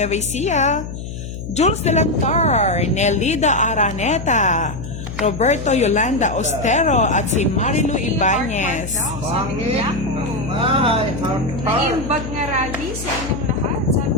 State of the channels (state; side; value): noise; left; hum, 8 dB below the sound